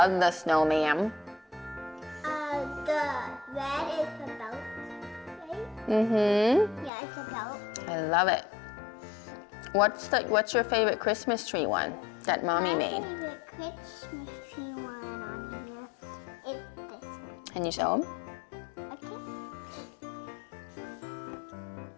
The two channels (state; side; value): drops out; right; at 6.9 s